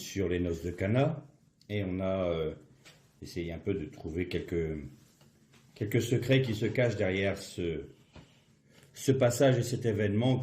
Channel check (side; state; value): both; identical; correlation 1.00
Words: les noces de Cana et on a essayé un peu de trouver quelques secrets qui se cachent derrière ce passage et cet